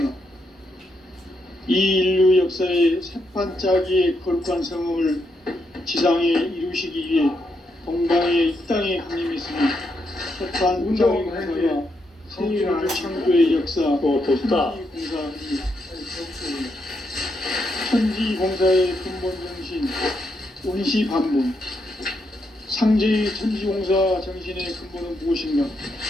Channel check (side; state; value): both; normal; correlation 0.80